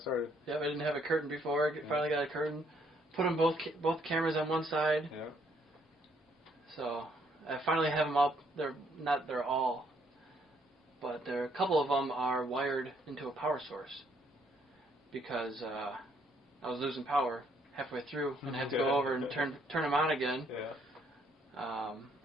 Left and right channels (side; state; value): both; normal; correlation 0.69